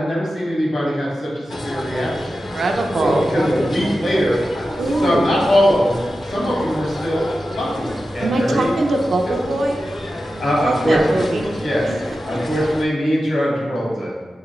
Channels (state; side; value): normal; both; correlation 0.92